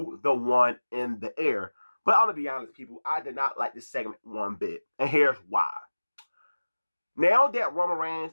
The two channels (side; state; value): both; inverted; correlation -1.00